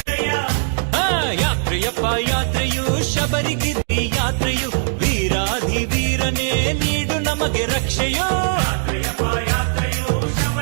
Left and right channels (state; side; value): silent; left; digital silence